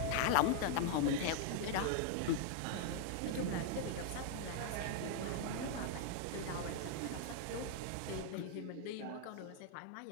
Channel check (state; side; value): different; both; correlation 0.00